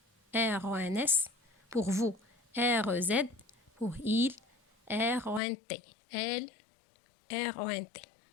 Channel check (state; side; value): drops out; right; at 5.4 s